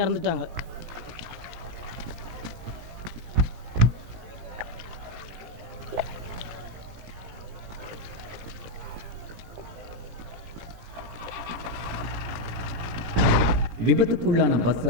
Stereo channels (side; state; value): left; late; 17 ms